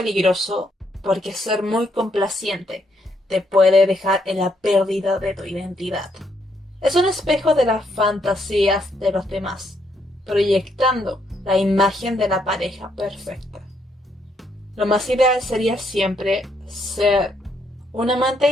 porque ser muy complaciente te puede dejar en la pérdida de tu identidad. Es un espejo de las fantasías de los demás, proyectando la imagen de la pareja perfecta. Lo más ideal sería siempre ser un amante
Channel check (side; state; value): both; normal; correlation 0.74